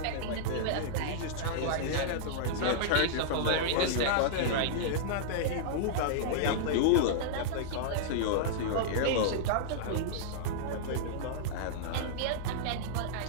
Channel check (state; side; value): different; both; correlation -0.02